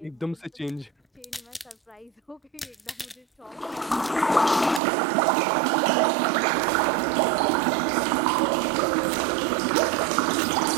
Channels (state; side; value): drops out; left; at 4.8 s